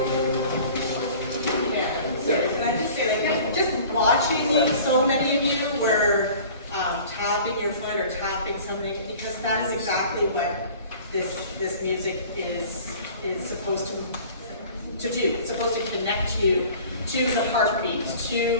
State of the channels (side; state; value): both; inverted; correlation -0.46